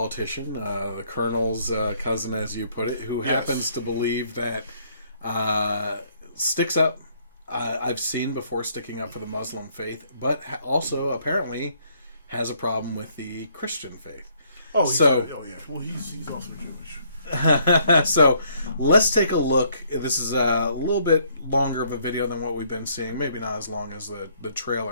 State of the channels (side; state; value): both; inverted; correlation -0.66